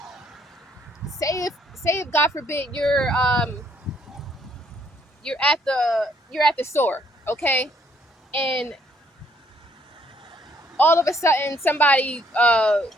Say if God forbid you're at the store, okay, and all of a sudden somebody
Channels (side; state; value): both; normal; correlation 0.67